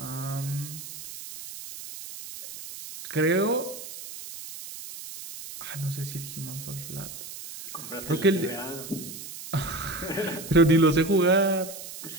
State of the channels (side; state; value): right; noise; hiss, 12 dB below the sound